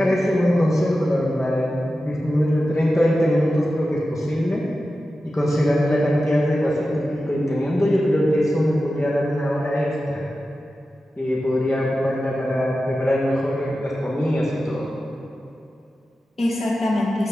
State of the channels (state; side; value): normal; both; correlation 0.93